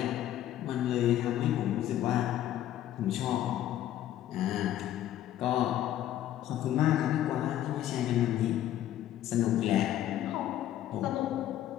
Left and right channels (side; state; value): right; quieter; 12.4 dB